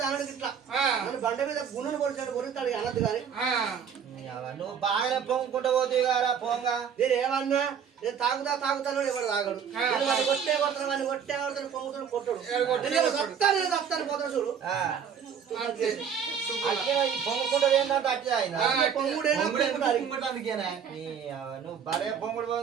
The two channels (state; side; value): quieter; left; 7.5 dB